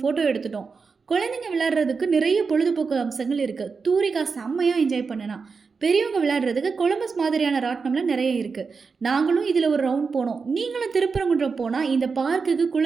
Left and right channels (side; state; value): left; quieter; 5.0 dB